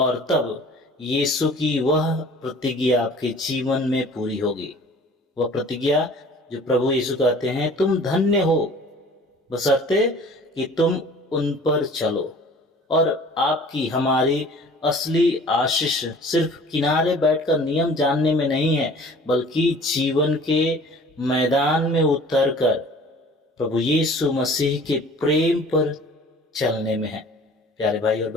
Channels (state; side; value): normal; both; correlation 0.47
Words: तब यीशु की वह प्रतिज्ञा आपके जीवन में पूरी होगी। वह प्रतिज्ञा जो प्रभु यीशु कहते हैं, तुम धन्य हो बशर्ते कि तुम उन पर चलो। और आपकी हमारी असली आशीष सिर्फ किनारे बैठकर नियम जानने में नहीं है, बल्कि जीवन के मैदान में उतरकर प्रभु यीशु मसीह के प्रेम पर चलने में है। प्यारे भाई और